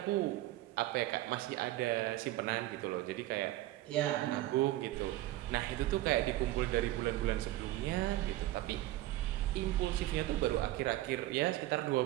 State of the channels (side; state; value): left; quieter; 16.1 dB